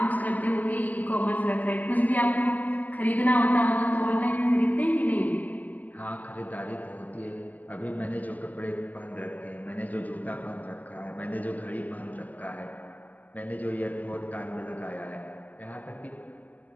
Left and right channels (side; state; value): right; late; 0.080 ms